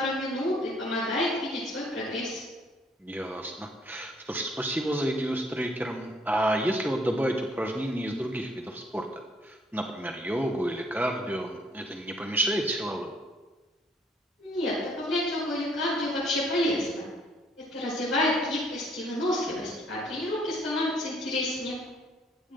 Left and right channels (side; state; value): both; normal; correlation 0.64